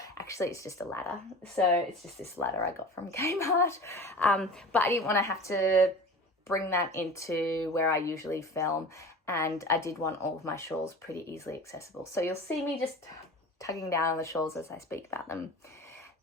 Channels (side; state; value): both; normal; correlation 0.36